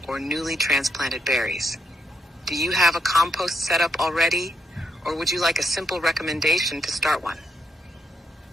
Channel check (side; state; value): both; normal; correlation 0.77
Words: or newly transplanted berries. Do you have a compost setup already, or would you like a simple recommendation to start one?